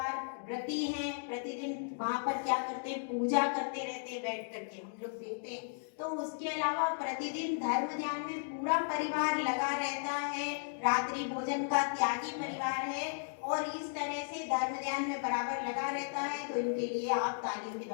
व्रती हैं, प्रतिदिन वहां पर क्या करते हैं, पूजा करते रहते हैं बैठ करके, हम लोग देखते हैं। तो उसके अलावा प्रतिदिन धर्म ध्यान में पूरा परिवार लगा रहता है, रात्रि भोजन का त्यागी परिवार है, और इस तरह से धर्म ध्यान में बराबर लगा रहता है। तो इनके लिए आप तालियों के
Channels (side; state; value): right; silent; digital silence